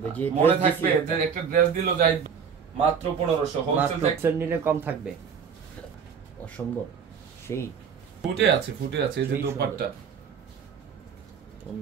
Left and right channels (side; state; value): left; quieter; 6.7 dB